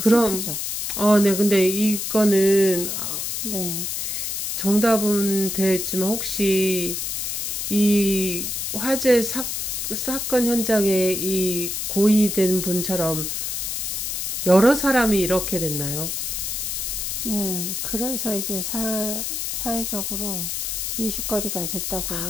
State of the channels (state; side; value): noise; left; hiss, 2 dB below the sound